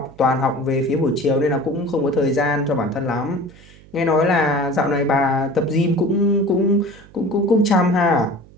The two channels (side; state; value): right; noise; hum, 24 dB below the sound